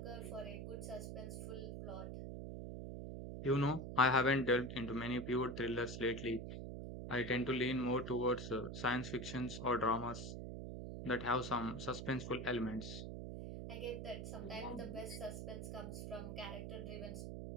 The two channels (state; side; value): noise; right; hum, 6 dB below the sound